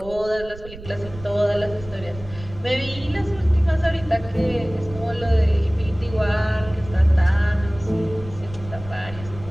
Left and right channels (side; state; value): right; noise; rumble, 15 dB below the sound